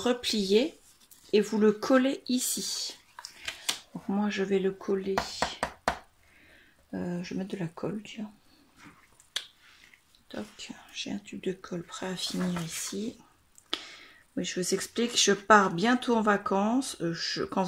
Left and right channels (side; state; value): both; identical; correlation 1.00